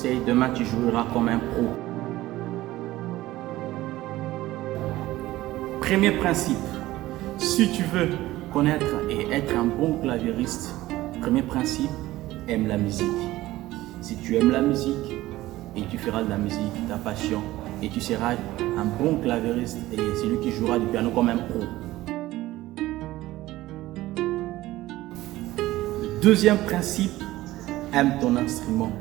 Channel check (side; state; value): left; quieter; 16.7 dB